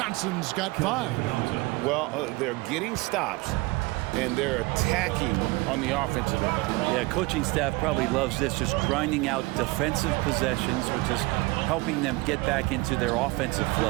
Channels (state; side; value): quieter; left; 23.4 dB